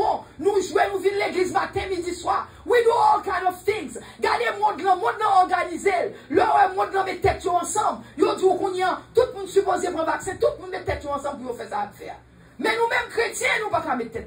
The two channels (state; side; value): identical; both; correlation 1.00